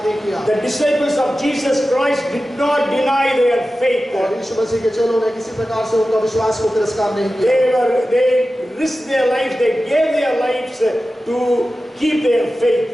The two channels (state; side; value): normal; both; correlation 0.94